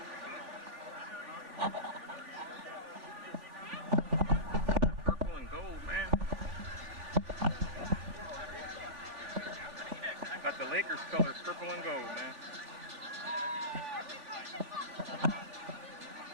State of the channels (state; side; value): late; left; 3.4 ms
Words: Purple and gold, man. Got the Lakers colors, purple and gold, man.